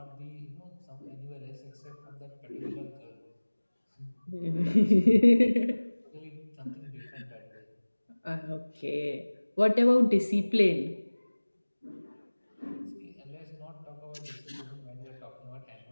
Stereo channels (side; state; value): both; inverted; correlation -1.00